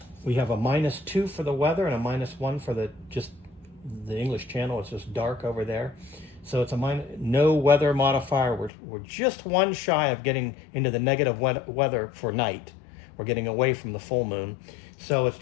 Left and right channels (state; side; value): drops out; right; at 8.7 s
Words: We have a -2 for the weather and a -1 for the English Channel. It's just dark over there. So it's no weather modifier. We're just 1 shy of getting into the negative weather for night. We're getting away from the full moon. So it's